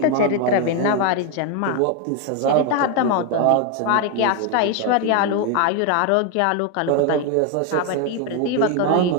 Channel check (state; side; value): different; both; correlation 0.01